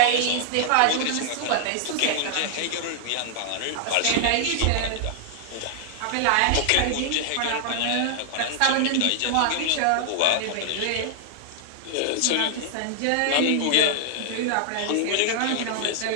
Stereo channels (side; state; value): both; different; correlation 0.00